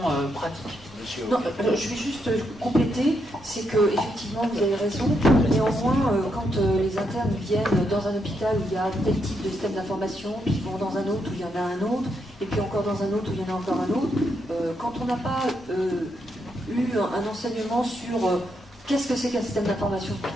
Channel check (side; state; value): both; normal; correlation 0.79